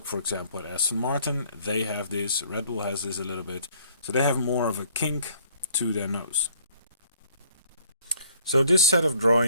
for example, at Aston Martin, they have this, Red Bull has this a little bit, so they have more of a kink to their nose. So this set of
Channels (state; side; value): inverted; both; correlation -0.60